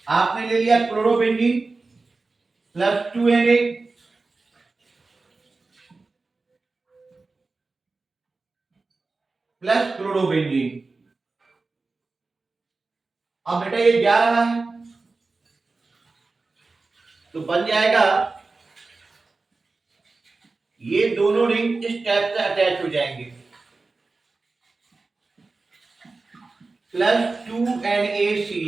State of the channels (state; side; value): quieter; left; 3.8 dB